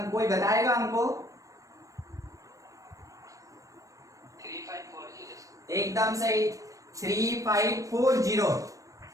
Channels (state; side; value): late; left; 0.16 ms